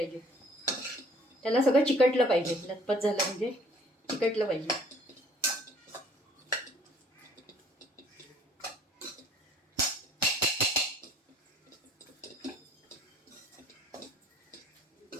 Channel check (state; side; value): normal; both; correlation 0.57